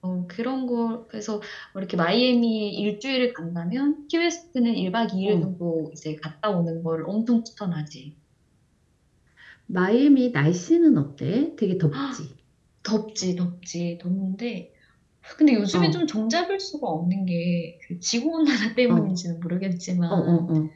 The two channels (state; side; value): identical; both; correlation 1.00